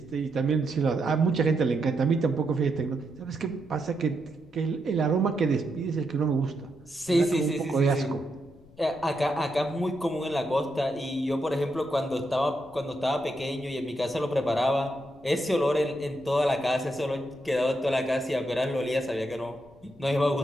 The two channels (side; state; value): left; noise; rumble, 26 dB below the sound